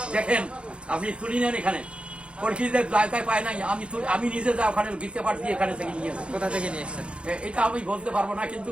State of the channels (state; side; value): late; left; 0.058 ms